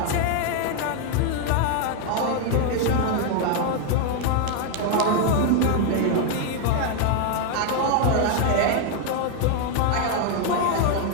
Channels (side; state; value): both; different; correlation 0.00